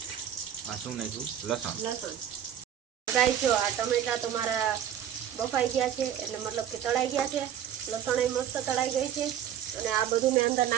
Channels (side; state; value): left; quieter; 10.0 dB